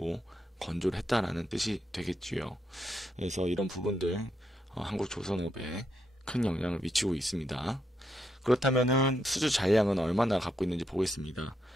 건조를 했다라는 뜻이 되겠지요. 그래서 이런 부분들 한국 조선업에 큰 영향을 미치고 있습니다. 그렇다면은 수주 잔량은 얼마나 갖고 있는지 보겠습니다.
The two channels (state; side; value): normal; both; correlation 0.81